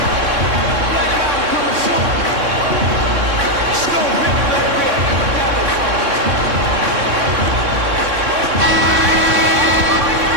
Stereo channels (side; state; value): left; late; 3.6 ms